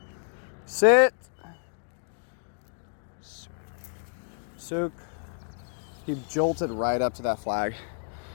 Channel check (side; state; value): right; silent; digital silence